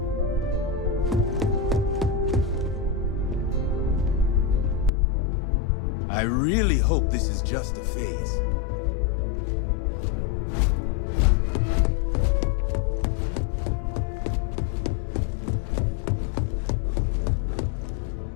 I really hope this is just a phase.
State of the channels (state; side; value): drops out; right; at 4.9 s